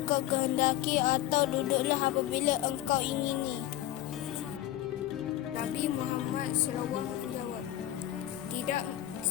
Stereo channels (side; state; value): right; quieter; 13.7 dB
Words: kehendaki atau duduklah apabila engkau ingini. Nabi Muhammad SAW menjawab, tidak